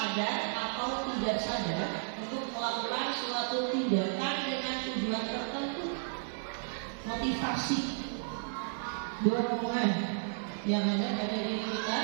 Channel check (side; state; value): left; silent; digital silence